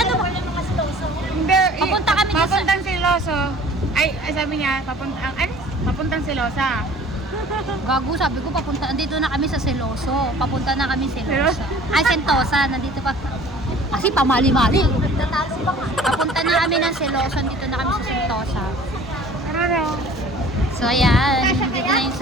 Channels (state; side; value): normal; both; correlation 0.48